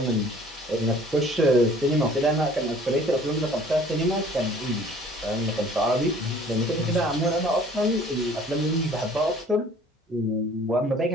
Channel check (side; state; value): both; normal; correlation 0.52